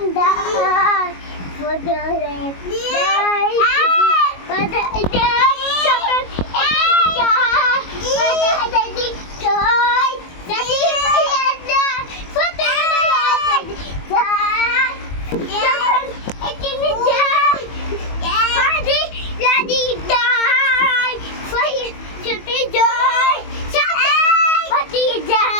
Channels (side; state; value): right; late; 22 ms